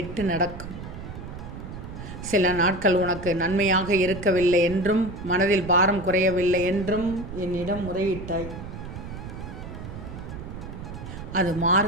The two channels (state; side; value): noise; right; rumble, 10 dB below the sound